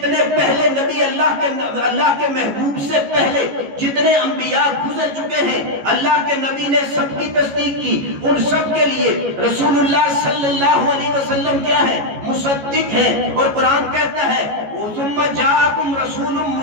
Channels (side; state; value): left; late; 14 ms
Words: پہلے نبی اللہ کے محبوب سے پہلے جتنے انبیاء گزر چکے ہیں، اللہ کے نبی نے سب کی تصدیق کی، ان سب کے لیے رسول اللہ صلی اللہ علیہ وسلم کیا ہے؟ مصدق ہیں۔ اور قرآن کہتا ہے ثم جاءکم رسول